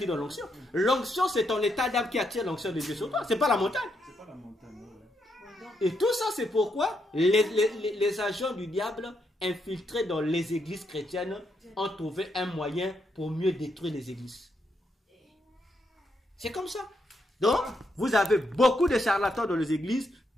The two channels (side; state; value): both; normal; correlation 0.79